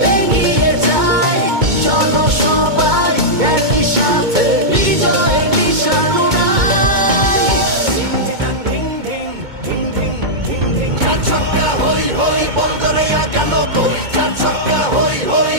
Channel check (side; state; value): left; late; 2.2 ms